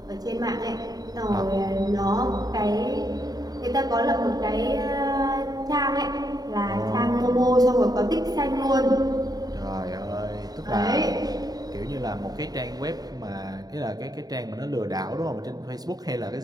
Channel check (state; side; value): late; left; 0.19 ms